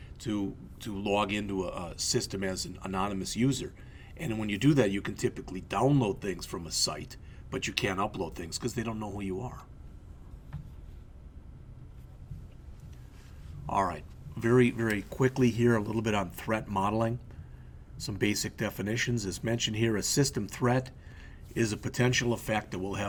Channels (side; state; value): both; identical; correlation 1.00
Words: to log into a system as an anonymous user. And when you do that, you can typically download things from a site, but you can't upload things because they don't know who you are. All right, very, very quickly here, a little bit on threat modeling. Some basic definitions. As mentioned here, a system threat is a potential effect that will